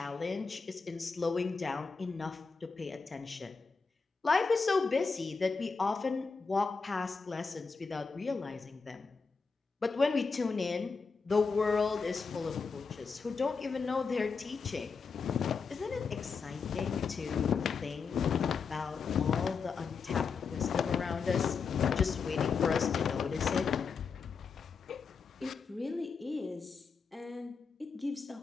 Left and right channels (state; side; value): quieter; right; 5.1 dB